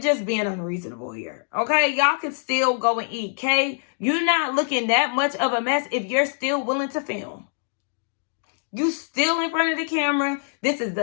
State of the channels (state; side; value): silent; right; digital silence